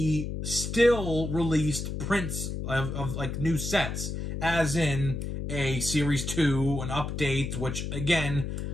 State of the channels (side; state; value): left; noise; hum, 4 dB below the sound